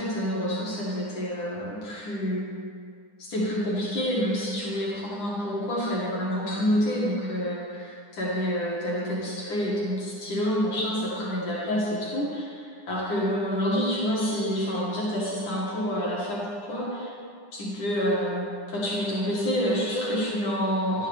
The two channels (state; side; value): late; right; 9.8 ms